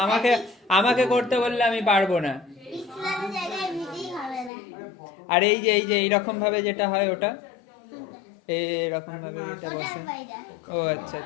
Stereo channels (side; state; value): right; drops out; at 4.5 s